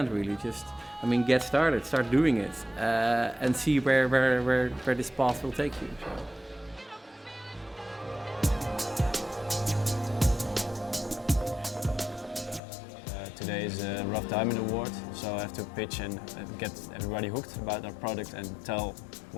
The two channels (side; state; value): right; drops out; at 12.6 s